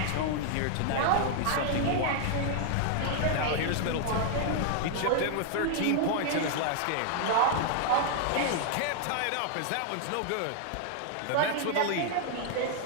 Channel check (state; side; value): different; both; correlation 0.00